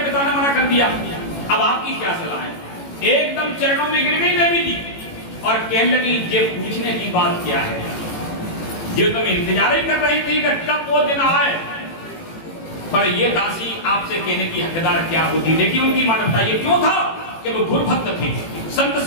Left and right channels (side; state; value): right; late; 18 ms